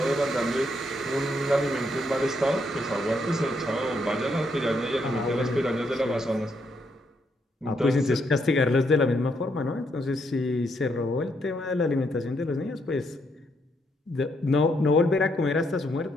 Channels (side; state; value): both; normal; correlation 0.76